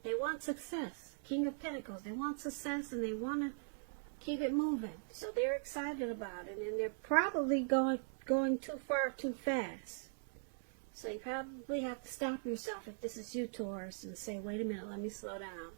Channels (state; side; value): silent; left; 51 dB below the other